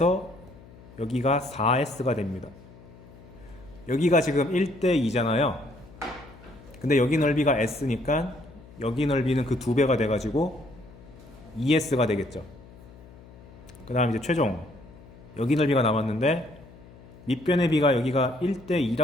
여기가 4S가 됩니다. 여기가 지금 1대 2잖아요. 근데 여기 넓이가 S니까 여기 넓이는 그 2배가 돼가지고 2S가 되겠죠. 그 다음 이제 최종 여기 넓이가 남았는데 밑변의 비가 여기가 1대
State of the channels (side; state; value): left; noise; hum, 21 dB below the sound